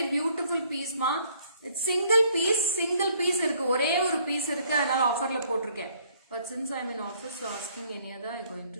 beautiful piece ma. It's single piece இருக்கு. ஒரே ஒரு piece இருக்கு. அதனால ஆஃபர்ல போட்டுருக்கேன். But since I'm in office, so asking any other, I'm going to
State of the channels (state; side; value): inverted; both; correlation -0.63